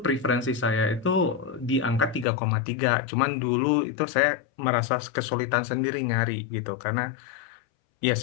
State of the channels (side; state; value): right; drops out; at 2.2 s